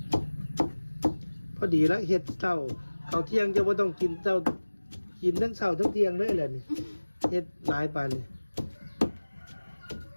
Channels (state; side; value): inverted; both; correlation -1.00